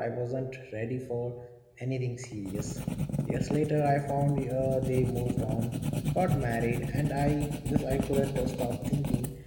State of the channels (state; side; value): identical; both; correlation 1.00